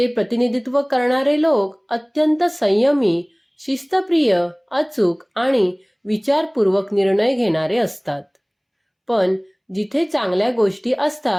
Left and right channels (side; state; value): both; identical; correlation 1.00